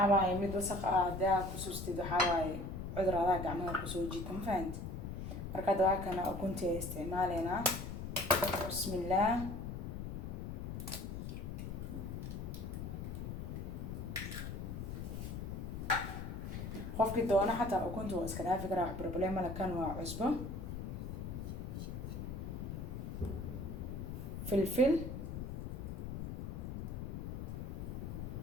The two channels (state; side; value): noise; left; rumble, 5 dB below the sound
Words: waaye mid wasaq ah daa ku substid waxa waaye cudurada gacmaha ku soo jiita ma fahanti marka waa kana ukunti isticmaalena bismillah qofkii doona xataa ukunta waa iska dhaafi karaa wax problem la kan waa cusbo فلفل